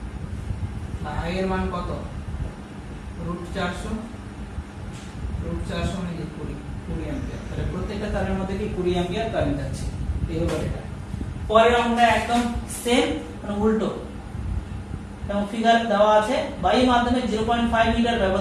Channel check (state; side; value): identical; both; correlation 1.00